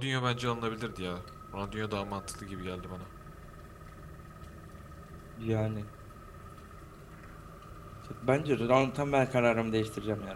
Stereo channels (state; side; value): identical; both; correlation 1.00